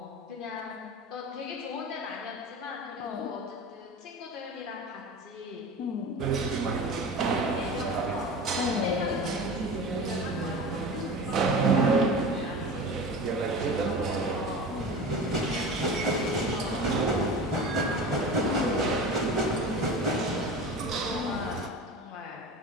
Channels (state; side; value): normal; both; correlation 0.32